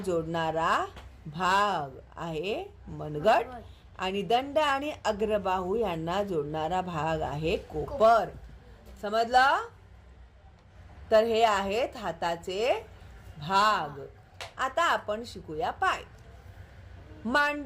भाग आहे मनगट आणि दंड आणि अग्रबाहू यांना जोडणारा भाग आहे कोपर. समजलं? तर हे आहेत हाताचे भाग. आता आपण शिकूया पाय.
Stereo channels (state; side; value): identical; both; correlation 1.00